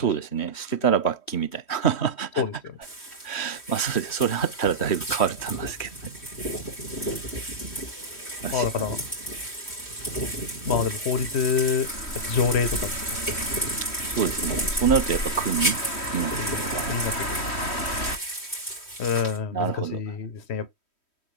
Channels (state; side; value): late; right; 3.1 ms